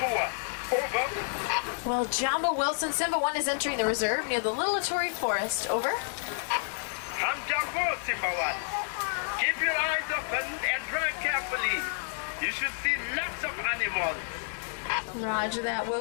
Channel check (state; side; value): silent; right; digital silence